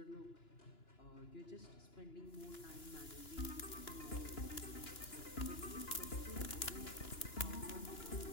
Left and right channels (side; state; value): right; late; 2.9 ms